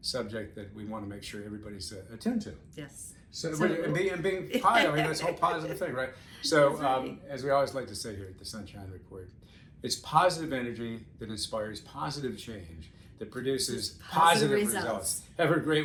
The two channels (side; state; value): both; identical; correlation 1.00